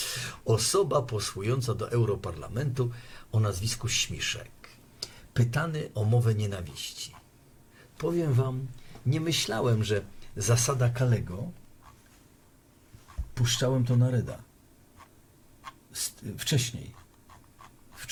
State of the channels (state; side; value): identical; both; correlation 1.00